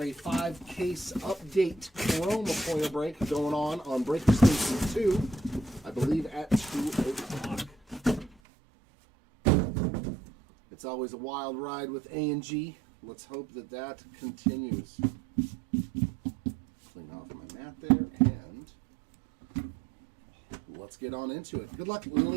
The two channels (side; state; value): left; drops out; at 8.3 s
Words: a 5-case update Chroma foil break going on Breaker Station 2, I believe at 2 o'clock. It's always a wild ride with A&G. Let's hope that that continues. Clean off my mat there, and let's get on into it. Good luck,